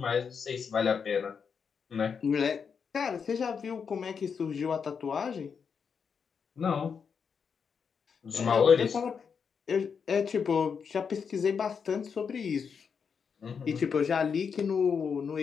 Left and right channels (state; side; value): quieter; right; 6.3 dB